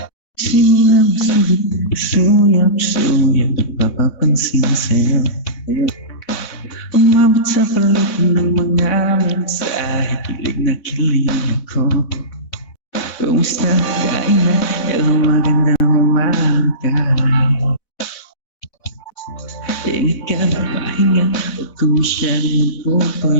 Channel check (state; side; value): late; right; 4.0 ms